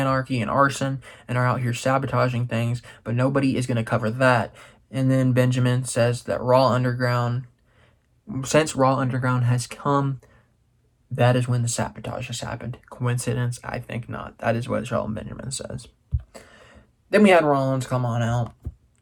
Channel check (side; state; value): both; identical; correlation 1.00